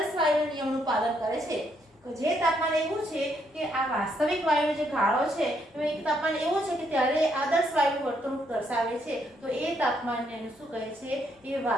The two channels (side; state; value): both; normal; correlation 0.74